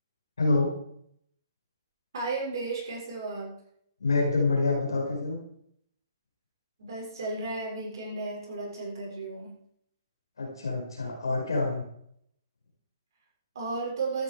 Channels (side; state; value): both; inverted; correlation -0.72